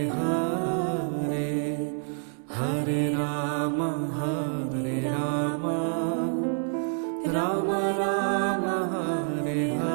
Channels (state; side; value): silent; left; 60 dB below the other